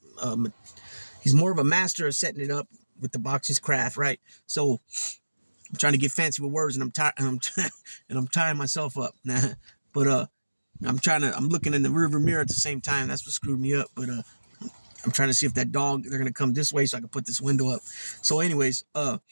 He's more of a master of setting it up with the boxing's craft, right? So I'm trying to get fancy with words, and I'm tired. And I'm tying myself up. Nah, but I'm looking in the rearview mirror at the same time. That's what screwed me up. But I'm trying to see if that dog, they're gonna come this way so I can put this window up. So, anyways, I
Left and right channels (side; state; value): both; inverted; correlation -1.00